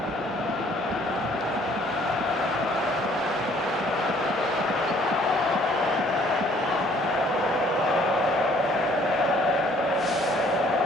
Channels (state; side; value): normal; both; correlation 0.60